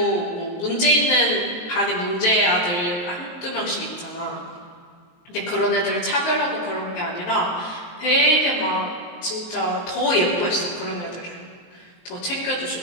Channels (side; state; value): right; late; 23 ms